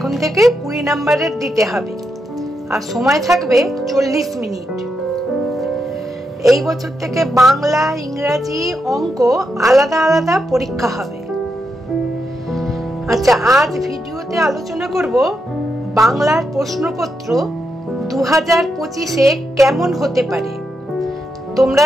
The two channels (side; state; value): both; normal; correlation 0.84